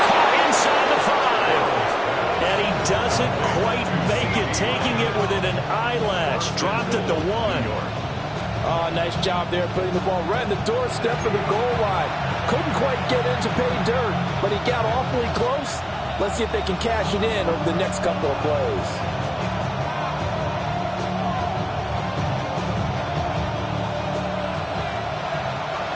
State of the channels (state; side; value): identical; both; correlation 1.00